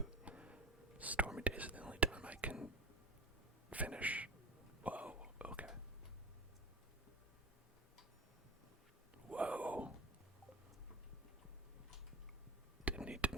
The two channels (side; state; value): both; normal; correlation 0.33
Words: Stormy days are the only time I can finish. Whoa, okay. Whoa. Didn't need to